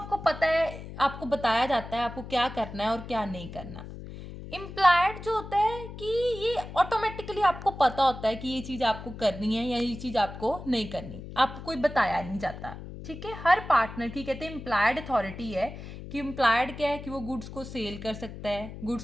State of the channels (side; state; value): left; noise; hum, 12 dB below the sound